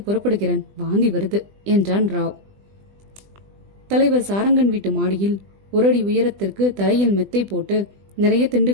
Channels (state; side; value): late; left; 20 ms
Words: புறப்படுகிறேன். வாந்தி வருது என்றான் ராவ். தலைவர் சாரங்கன் வீட்டு மாடியில் 1 அடி உயரத்திற்கு தரையில் மெத்தை போட்டு நிறைய